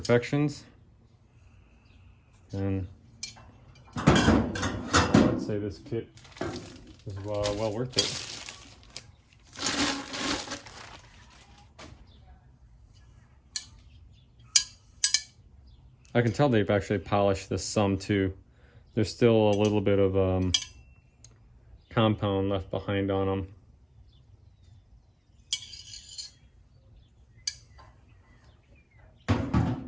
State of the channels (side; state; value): both; identical; correlation 1.00